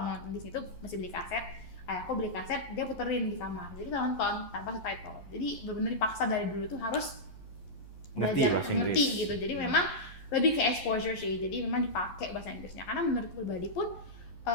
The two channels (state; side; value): late; right; 11 ms